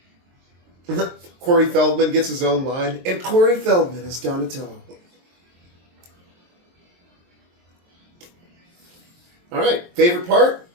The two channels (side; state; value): left; late; 23 ms